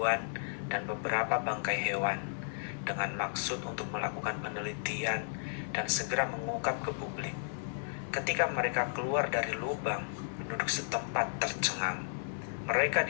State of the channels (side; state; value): right; silent; 55 dB below the other